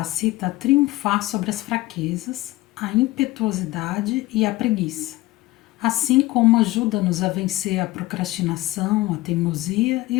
a triunfar sobre as fraquezas, a impetuosidade e a preguiça, assim como ajuda-nos a vencer a procrastinação, a teimosia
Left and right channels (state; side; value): quieter; right; 18.5 dB